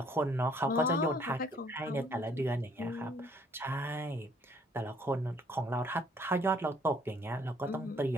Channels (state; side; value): normal; both; correlation 0.62